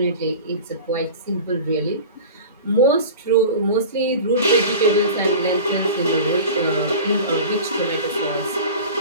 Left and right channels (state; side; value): inverted; both; correlation -0.35